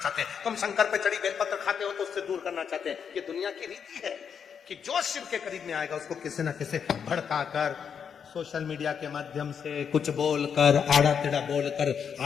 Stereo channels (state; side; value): quieter; right; 7.2 dB